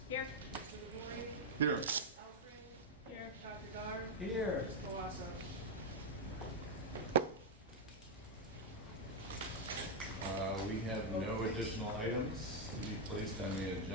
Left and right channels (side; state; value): both; normal; correlation 0.00